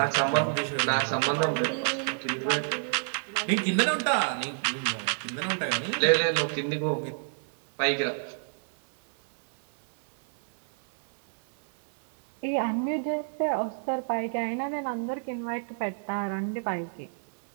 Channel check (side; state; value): left; silent; digital silence